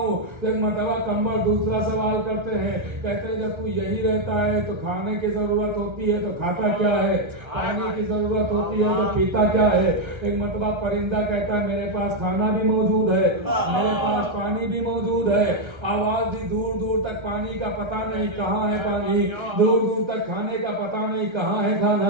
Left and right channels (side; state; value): left; late; 1.3 ms